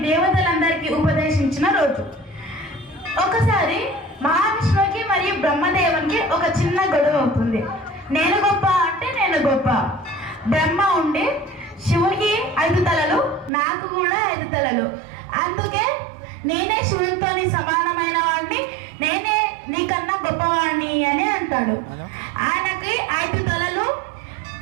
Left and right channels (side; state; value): left; drops out; at 13.5 s